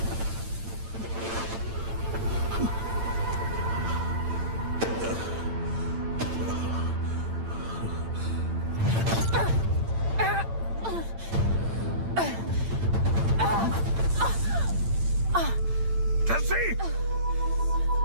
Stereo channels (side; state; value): left; late; 8.9 ms